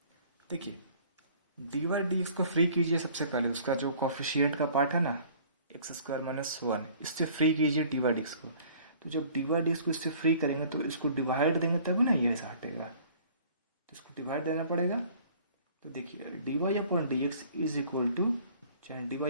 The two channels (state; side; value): inverted; both; correlation -0.52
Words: देखिए dy/dx को फ्री कीजिए, सबसे पहले उसका जो कॉफिशिएंट का पार्ट है ना एक्स स्क्वायर माइनस 1, इससे फ्री कीजिए dy/dx को। तो जब dy/dx को इससे फ्री करेंगे तो इसको डिवाइड देंगे तभी ना ये ऐसा हटेगा, तो इसको डिवाइड देना पड़ेगा। तो देखिए dy/dx is equal to